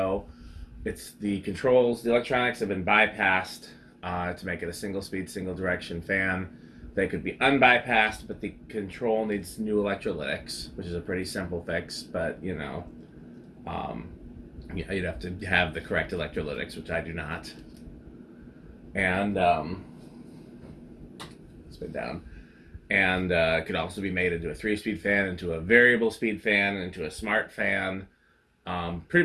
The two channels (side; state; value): both; identical; correlation 1.00